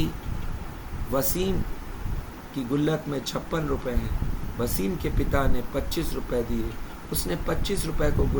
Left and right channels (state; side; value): identical; both; correlation 1.00